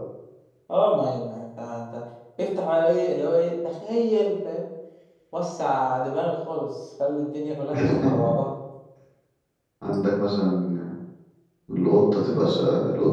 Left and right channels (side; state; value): both; identical; correlation 1.00